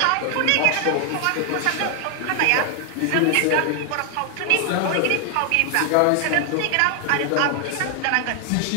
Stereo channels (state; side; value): different; both; correlation 0.00